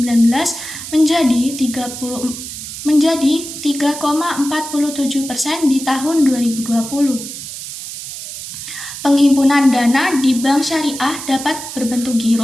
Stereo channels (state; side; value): noise; right; hiss, 10 dB below the sound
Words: menjadi 3,47% di tahun 2020. Penghimpunan dana di bank syariah dapat berbentuk